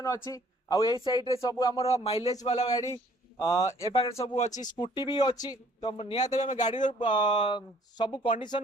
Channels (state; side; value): normal; both; correlation 0.59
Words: अछि। आ एई साइड रे सब हमर माइलेज वाला गाड़ी ए पाखे सब अच्छी स्कूटी भी अच्छी। तो निहत आम गाड़ी सब